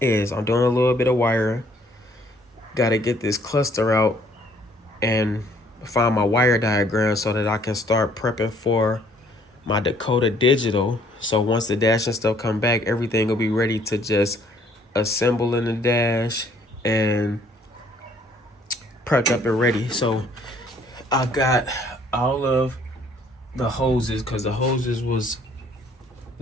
I'm doing a little bit of wiring. Got to get this cluster out and find my wire diagram so that I can start prepping for my Dakota Digital. So once the dash and stuff come back, everything will be ready to just assemble in the dash and prepped up and ready. So I got all of the hoses, because the hoses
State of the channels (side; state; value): both; normal; correlation 0.62